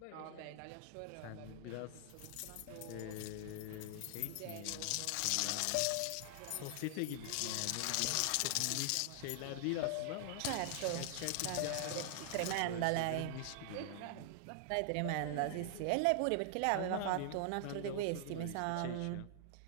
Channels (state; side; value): different; both; correlation 0.00